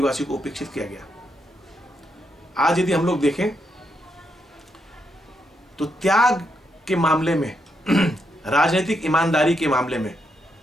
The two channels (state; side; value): normal; both; correlation 0.80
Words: को उपेक्षित किया गया। आज यदि हम लोग देखें तो त्याग के मामले में, राजनीतिक ईमानदारी के मामले में